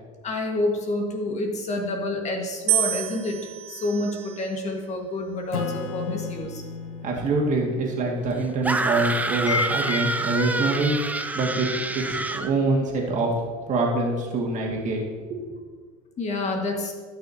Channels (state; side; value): normal; both; correlation 0.39